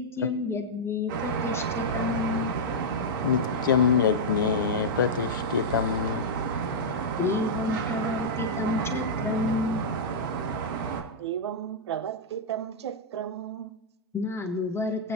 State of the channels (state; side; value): normal; both; correlation -0.07